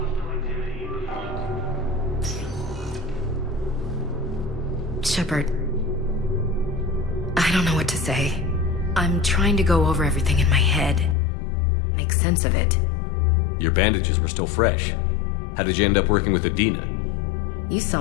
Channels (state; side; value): drops out; right; at 11.2 s